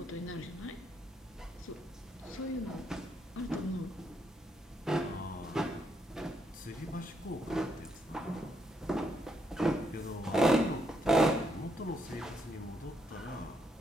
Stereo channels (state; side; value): normal; both; correlation 0.76